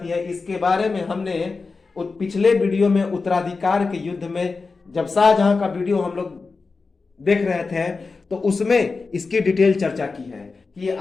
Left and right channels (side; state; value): right; quieter; 4.2 dB